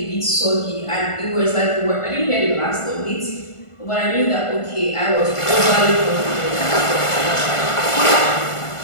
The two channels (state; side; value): late; right; 1.5 ms